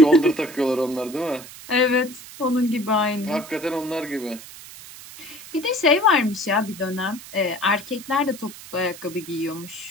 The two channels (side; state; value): right; noise; hiss, 16 dB below the sound